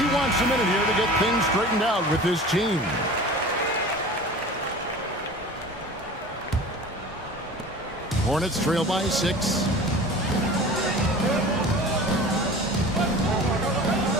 wants a minute here to get things straightened out with his team. Hornets trail by 6.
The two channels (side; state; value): both; normal; correlation 0.39